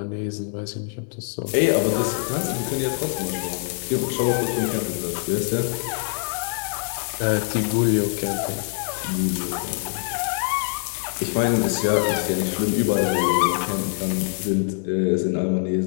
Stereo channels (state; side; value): silent; right; digital silence